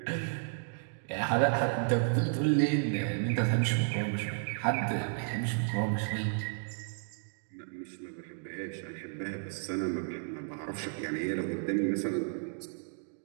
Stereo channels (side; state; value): left; silent; digital silence